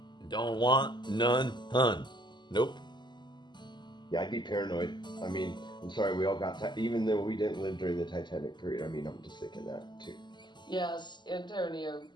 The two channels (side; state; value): right; late; 0.21 ms